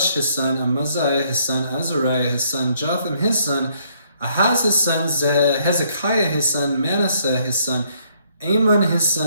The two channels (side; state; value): both; inverted; correlation -0.67